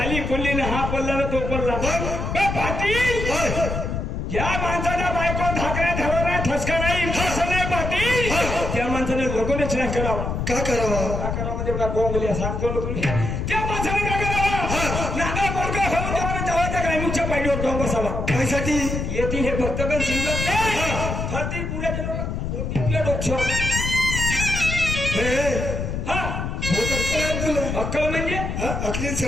पडली ना, हा पडला ना तो पडला. पाटील, ज्या माणसाच्या बायको धाकऱ्या ठरवणार ठसका नाही असं नाही पाटील, त्या माणसाने लगोनच नाही करावा. का करावा? का करावा म्हणजे मला बोंगल्या सांगतो ना तुम्ही. त्या माणसाने काय करावा? नागा पोरगा होऊन त्याला जवळच्या ग्रामीणच्या पायरीवर जाऊन बसावा. त्यासाठी येतील हे भक्तगण शिवत नाही, फरती पुढे गेलो तुला डोक्ष. हा तुला अक्कल म्हणजे अखली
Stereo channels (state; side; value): noise; left; rumble, 3 dB below the sound